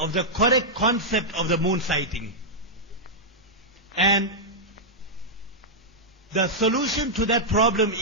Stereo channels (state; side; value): normal; both; correlation -0.07